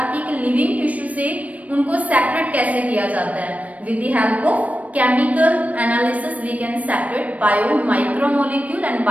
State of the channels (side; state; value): left; late; 0.068 ms